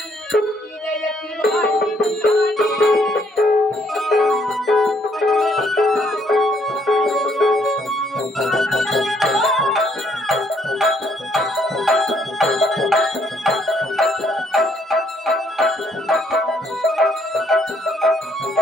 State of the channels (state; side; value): normal; both; correlation 0.68